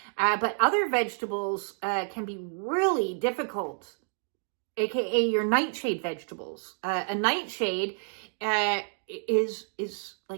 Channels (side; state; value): left; silent; 58 dB below the other